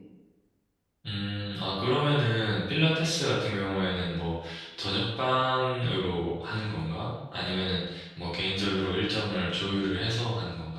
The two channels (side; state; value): both; identical; correlation 1.00